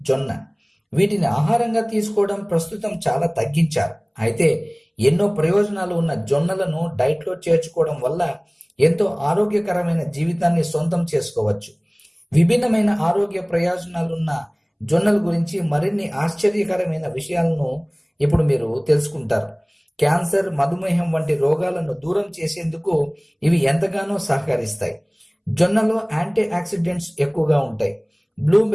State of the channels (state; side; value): identical; both; correlation 1.00